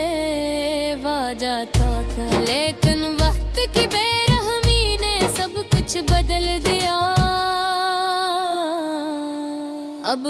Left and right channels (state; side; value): identical; both; correlation 1.00